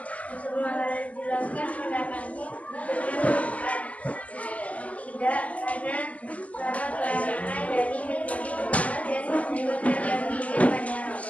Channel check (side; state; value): right; late; 0.071 ms